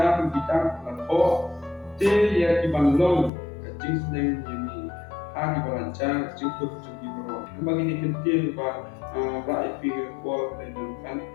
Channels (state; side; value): drops out; right; at 3.3 s